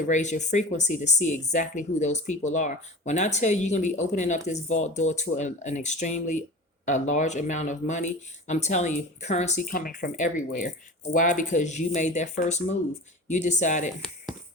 raise your frequency to see exactly who those people are. When I tell you you're going to be opening up this vault door to an extremely a large amount of money, I'm telling you, currency coming from everywhere. Why? Because you made that first move. You decided,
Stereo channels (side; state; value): both; normal; correlation 0.34